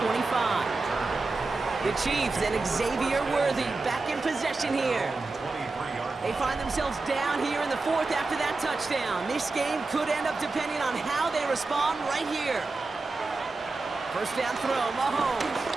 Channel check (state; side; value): quieter; left; 3.6 dB